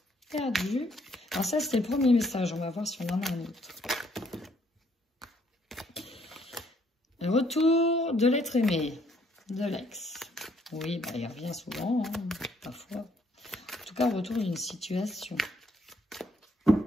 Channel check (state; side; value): normal; both; correlation 0.67